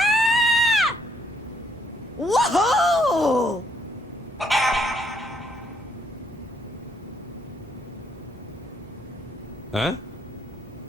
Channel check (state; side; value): normal; both; correlation 0.70